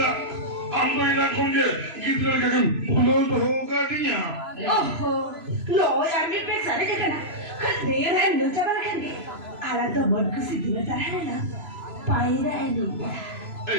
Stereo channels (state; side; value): late; left; 3.0 ms